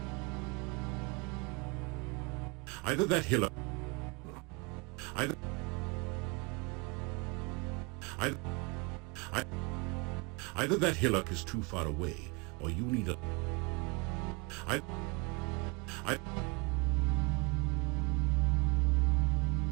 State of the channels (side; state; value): left; quieter; 28.2 dB